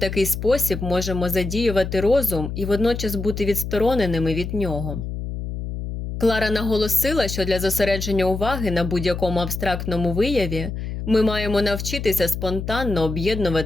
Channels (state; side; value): noise; left; hum, 6 dB below the sound